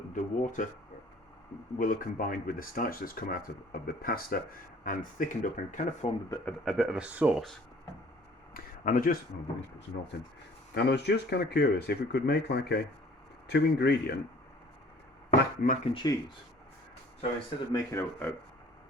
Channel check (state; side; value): normal; both; correlation 0.53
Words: water will have combined with the starch that's come out of the pasta and thickened up and kind of formed a bit of a sauce. And I just let me put some salt in. And I was just kind of curious if we could make like a 2-ingredient mac and cheese. So instead of making a